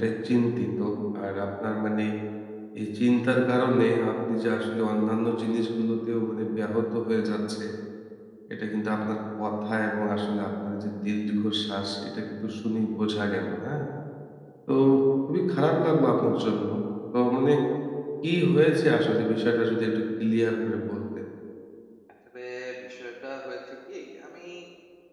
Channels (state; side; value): identical; both; correlation 1.00